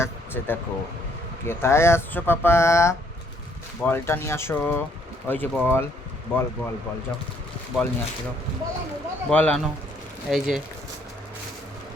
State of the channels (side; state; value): both; normal; correlation 0.66